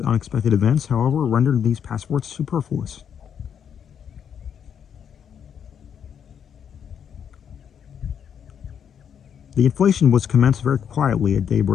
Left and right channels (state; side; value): quieter; right; 8.1 dB